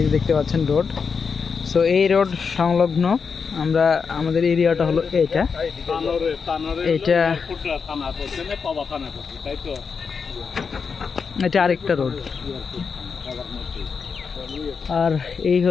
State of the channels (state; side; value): quieter; right; 5.7 dB